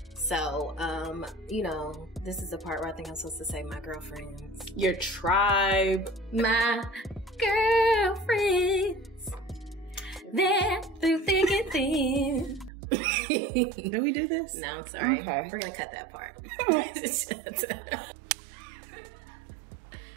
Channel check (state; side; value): drops out; left; at 12.7 s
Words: So, this is the part where I think I'm supposed to say my girlfriends. Your tribe. My girlfriends. They're through thick and thin. Did we do this? No, I'm sorry. Okay. We're going to cut that part.